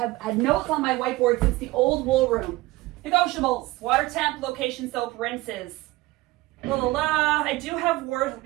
had notes on my whiteboard since the old wool room. Negotiables, water temp, location soap, rinses. La la la. I do have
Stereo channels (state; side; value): quieter; left; 19.4 dB